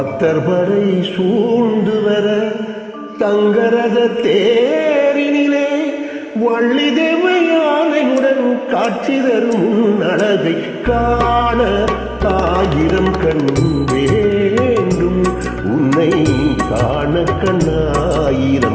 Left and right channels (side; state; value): both; identical; correlation 1.00